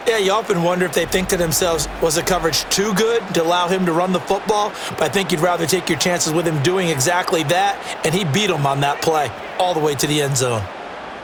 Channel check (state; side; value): identical; both; correlation 1.00